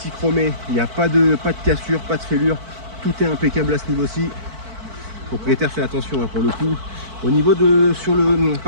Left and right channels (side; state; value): left; late; 4.5 ms